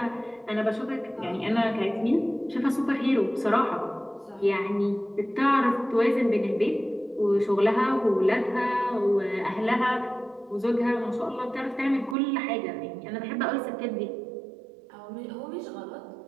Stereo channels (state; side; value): drops out; left; at 12.2 s